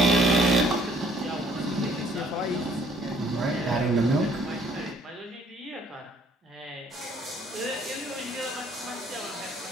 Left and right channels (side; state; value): both; normal; correlation 0.61